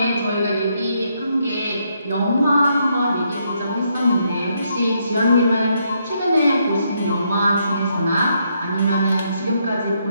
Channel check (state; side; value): inverted; both; correlation -0.76